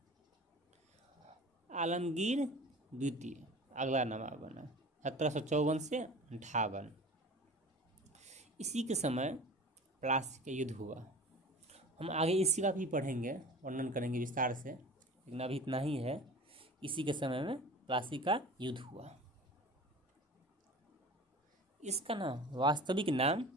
आलमगीर द्वितीय अगला नवाब बना 1754 से 58। इसी के समय प्लासी का युद्ध हुआ। हम आगे इसी का भी पढ़ेंगे, वर्णन करेंगे विस्तार से, लेकिन अभी इतना ही है। इसी के समय में प्लासी का युद्ध हुआ। इसका नाम, वास्तविक नाम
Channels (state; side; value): normal; both; correlation 0.39